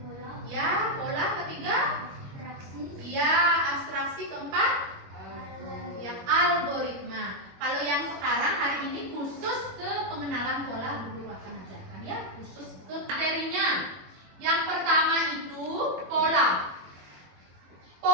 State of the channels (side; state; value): left; late; 21 ms